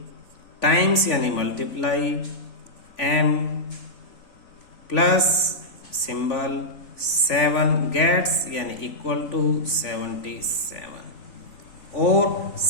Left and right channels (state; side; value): late; right; 3.5 ms